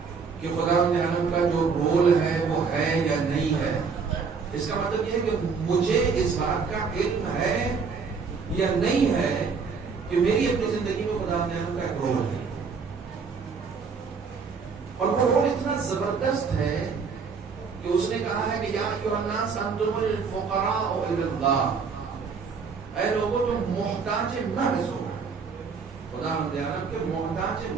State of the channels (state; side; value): quieter; left; 5.4 dB